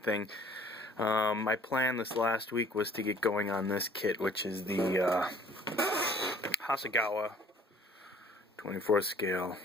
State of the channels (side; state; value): both; normal; correlation 0.54